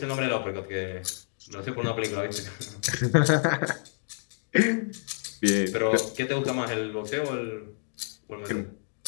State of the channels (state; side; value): silent; right; digital silence